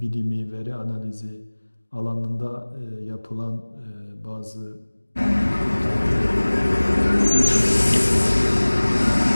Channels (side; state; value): both; inverted; correlation -1.00